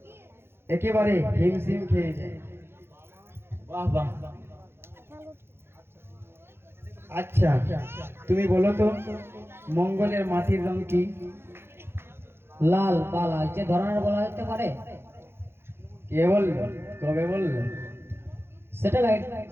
একেবারে হিমশিম খেয়ে যায়। বাহ বাহ। আচ্ছা, তুমি বলো তো, মঙ্গলের মাটির রং কি? লাল বা লালচে ধরনের বলা যেতে পারে। কে বলল? কবে বলল? স্যাটেলাইট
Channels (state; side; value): late; left; 0.11 ms